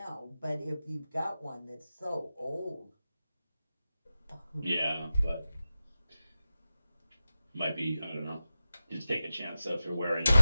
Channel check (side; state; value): both; inverted; correlation -0.95